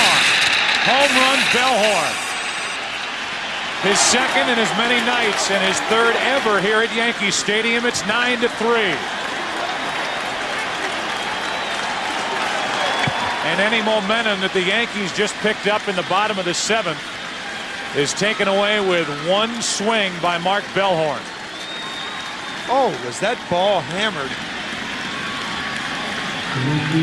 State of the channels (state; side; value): identical; both; correlation 1.00